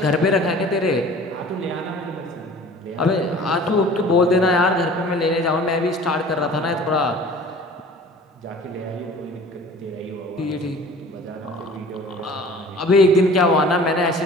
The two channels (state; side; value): normal; both; correlation 0.45